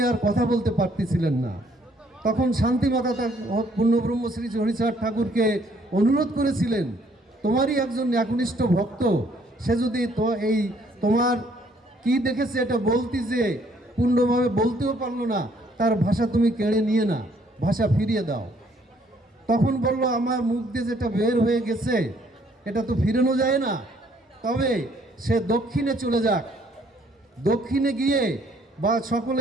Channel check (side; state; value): both; normal; correlation 0.64